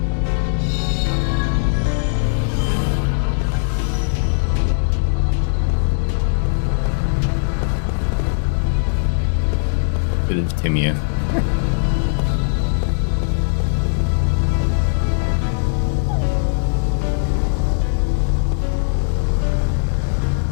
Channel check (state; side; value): silent; right; digital silence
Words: Bit of Timia.